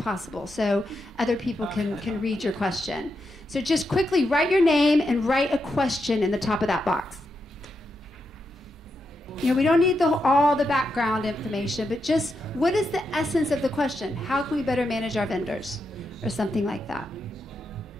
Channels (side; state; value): both; normal; correlation 0.84